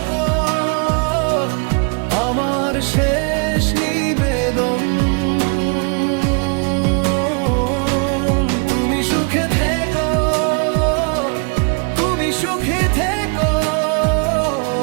আমার শেষ নিবেদন। তুমি সুখে থেকো, তুমি সুখে থেকো,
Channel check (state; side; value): quieter; left; 35.8 dB